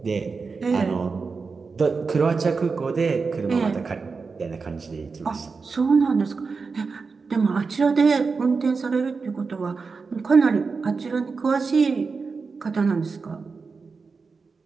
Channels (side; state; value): left; quieter; 4.7 dB